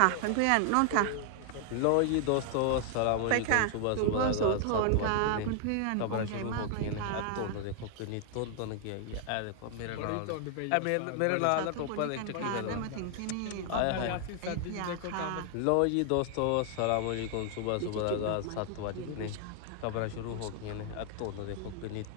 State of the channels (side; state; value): both; different; correlation 0.00